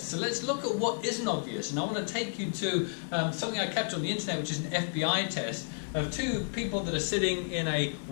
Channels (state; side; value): silent; right; 57 dB below the other